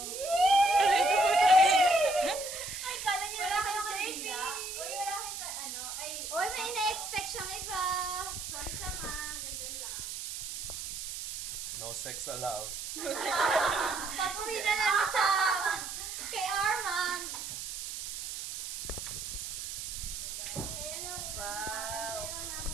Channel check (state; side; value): noise; right; hiss, 6 dB below the sound